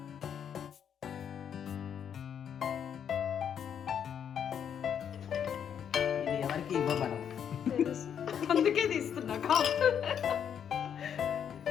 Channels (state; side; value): quieter; right; 8.4 dB